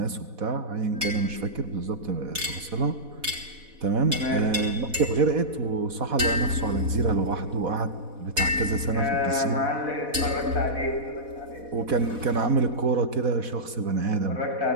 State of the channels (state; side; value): late; left; 4.1 ms